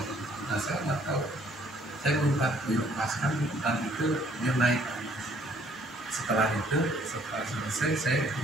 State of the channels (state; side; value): normal; both; correlation 0.62